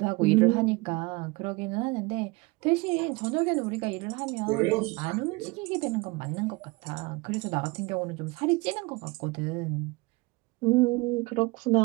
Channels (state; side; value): quieter; left; 24.4 dB